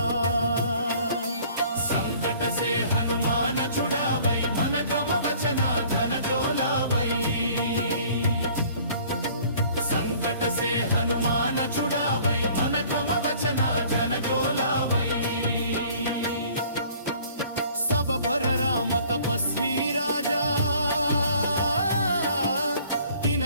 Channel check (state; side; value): inverted; both; correlation -0.53